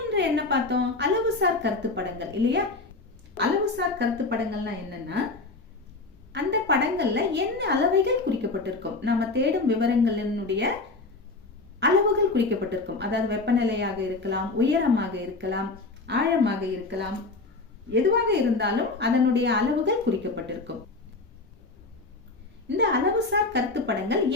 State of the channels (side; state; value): right; quieter; 3.5 dB